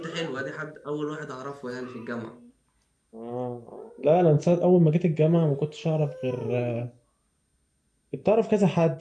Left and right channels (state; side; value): identical; both; correlation 1.00